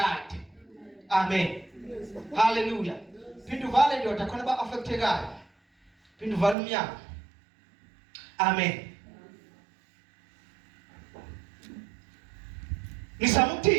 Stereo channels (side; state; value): left; drops out; at 6.6 s